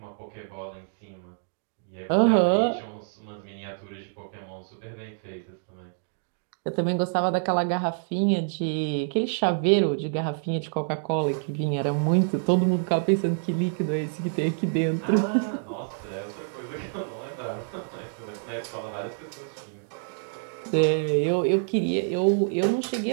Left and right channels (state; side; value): silent; left; digital silence